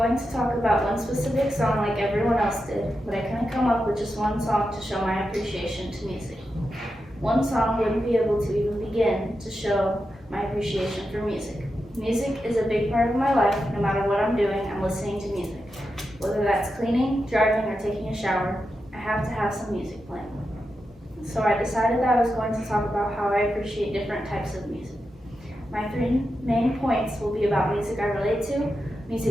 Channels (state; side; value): normal; both; correlation 0.88